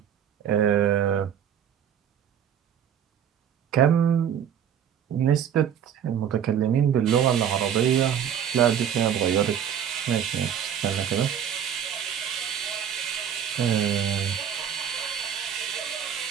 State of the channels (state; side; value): quieter; left; 8.9 dB